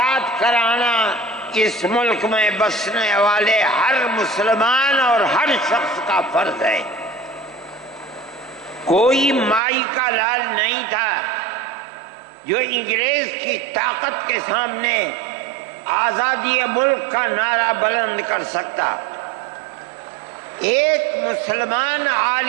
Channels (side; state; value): left; drops out; at 9.6 s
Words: کرانا اس ملک میں بسنے والے ہر مسلمان اور ہر شخص کا فرض ہے۔ کوئی مائی کا لال نہیں تھا جو انگریز کی طاقت کے سامنے آزادی ملک کا نعرہ بلند کر سکتا۔ ایک مسلمان